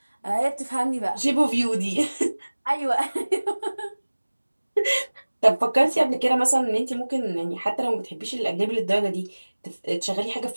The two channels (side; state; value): both; inverted; correlation -1.00